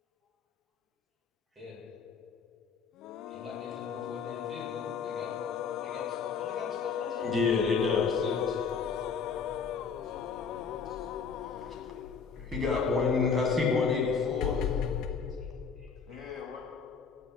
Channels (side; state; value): right; quieter; 5.7 dB